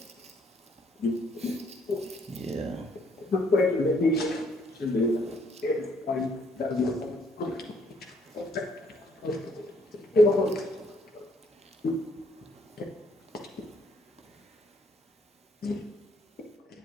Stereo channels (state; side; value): normal; both; correlation 0.67